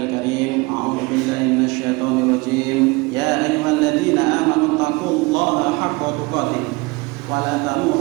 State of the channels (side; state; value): left; quieter; 25.1 dB